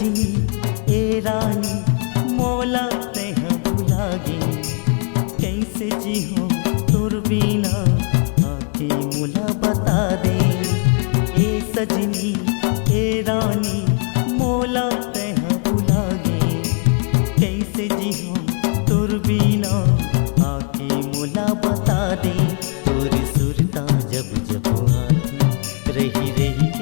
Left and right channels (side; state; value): right; quieter; 38.7 dB